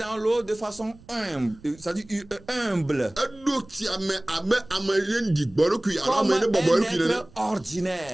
l'eau de façon humble, c'est-à-dire humble, eɖo tsia me abe ame ye ɖi gbɔɖokui alo comme ame un ne bɔbɔ eɖokui nene être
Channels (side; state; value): right; noise; rumble, 24 dB below the sound